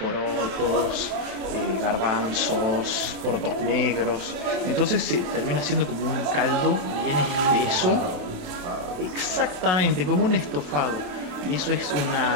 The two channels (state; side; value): late; left; 27 ms